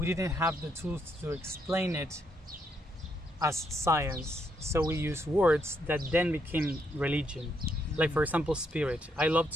didn't have the tools to explain it as science. So we use words that then became religion. Like, for example, spirit. I love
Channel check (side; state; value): both; normal; correlation 0.76